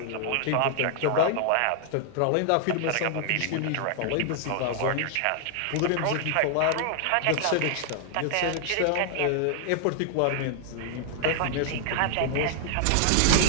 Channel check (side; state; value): both; different; correlation 0.00